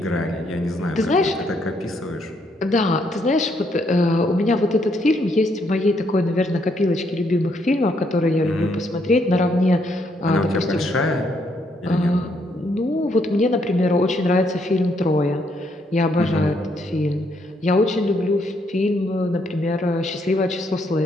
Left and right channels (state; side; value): normal; both; correlation 0.73